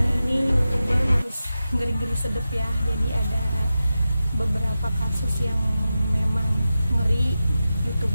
ini YouTuber harus ngeri-ngeri sedep ya, jadi ada beberapa kasus yang memang ngeri.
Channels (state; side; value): inverted; both; correlation -0.92